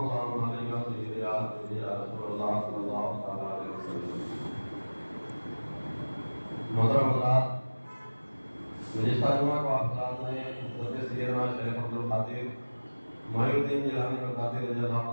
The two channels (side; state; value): both; inverted; correlation -1.00